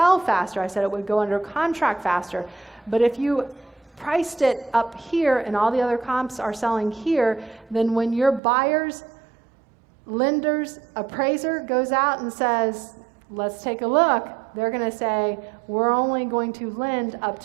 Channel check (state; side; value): drops out; left; at 8.4 s